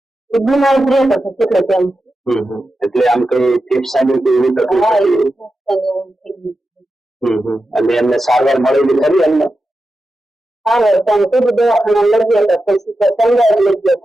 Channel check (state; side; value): normal; both; correlation 0.90